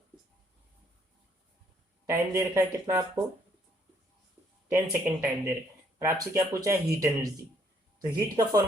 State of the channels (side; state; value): both; normal; correlation 0.67